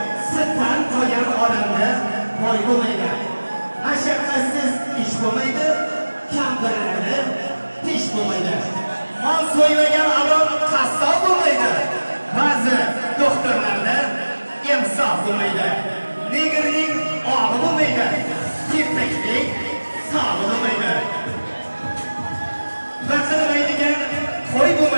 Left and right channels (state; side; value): inverted; both; correlation -1.00